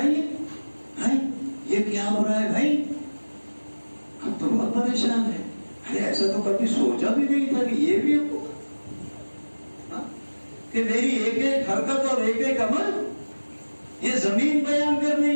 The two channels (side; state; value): both; inverted; correlation -1.00